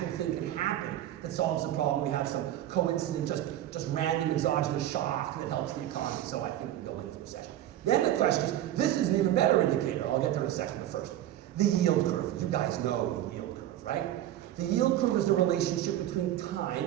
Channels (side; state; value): left; quieter; 12.7 dB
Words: thing can happen that solves the problem. We have some coincident, just random exogenous shock that helps the economy. So I think we go into recession. Then the question is, this is an even better indicator. I'll get there in a second, but first, the yield curve. You guys know the yield curve, right? The yield curve is the relationship between